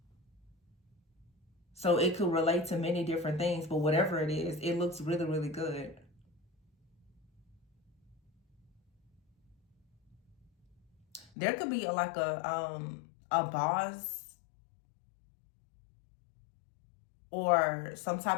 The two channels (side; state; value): right; drops out; at 11.3 s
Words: So it could relate to many different things, but whatever it is, it looks really, really good. There could be like a boss or some